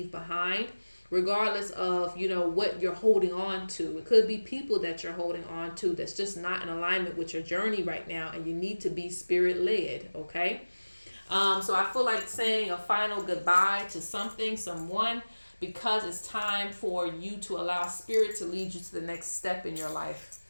behind, regardless of, what you're holding on to. It could be people that you're holding on to that's just not in alignment with your journey right now, and you need to be Spirit led, okay? So I feel like saying a final goodbye to something, someone, because it's time for you to allow Spirit to lead you to the next step in your life.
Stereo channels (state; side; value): inverted; both; correlation -1.00